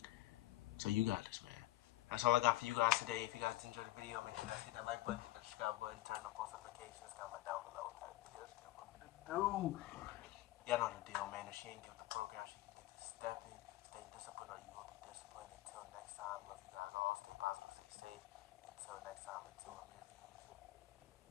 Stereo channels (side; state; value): right; quieter; 17.2 dB